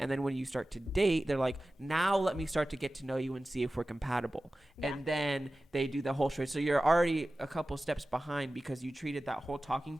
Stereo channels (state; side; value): normal; both; correlation 0.96